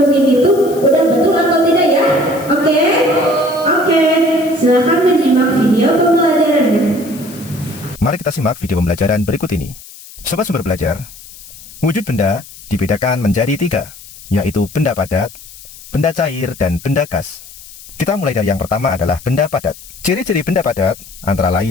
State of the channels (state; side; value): noise; left; hiss, 18 dB below the sound